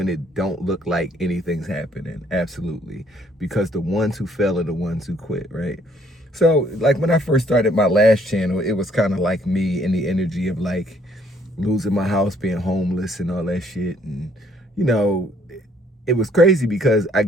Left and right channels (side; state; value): both; normal; correlation 0.64